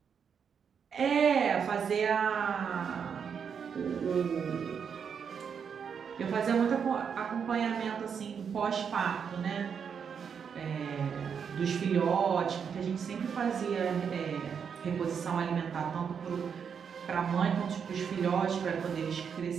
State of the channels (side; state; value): left; quieter; 6.9 dB